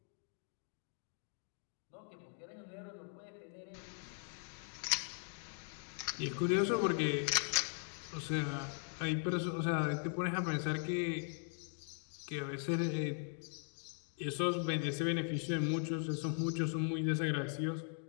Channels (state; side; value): silent; right; 51 dB below the other